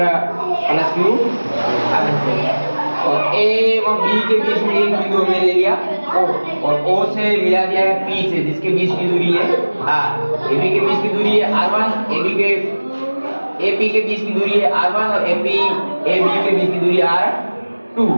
+q आवेश है, और ए व बी के बीच में एक बिंदु हमने ले लिया O, और O से मिला दिया है P से, जिसके बीच की दूरी है R। AB के बीच की दूरी है R1, AP के बीच की दूरी है R1, और AB के बीच की दूरी है R2,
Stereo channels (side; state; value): both; inverted; correlation -1.00